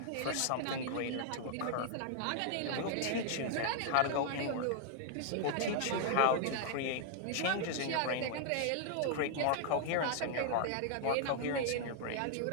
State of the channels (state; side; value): different; both; correlation -0.01